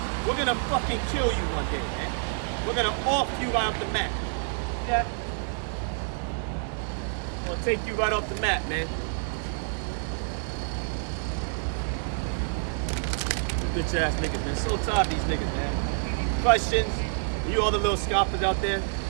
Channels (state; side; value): silent; left; digital silence